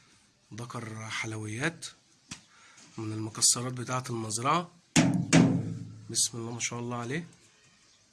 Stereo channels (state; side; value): identical; both; correlation 1.00